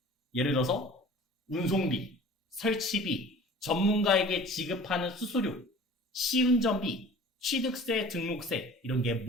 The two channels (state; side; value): normal; both; correlation 0.44